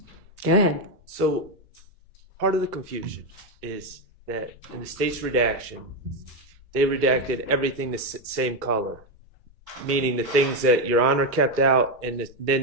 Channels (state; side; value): normal; both; correlation 0.07